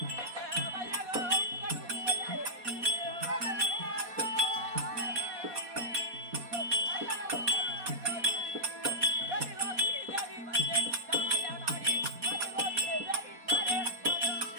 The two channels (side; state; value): left; late; 4.2 ms